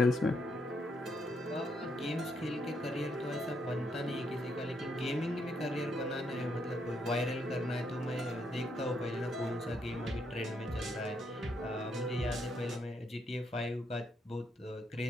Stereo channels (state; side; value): normal; both; correlation 0.76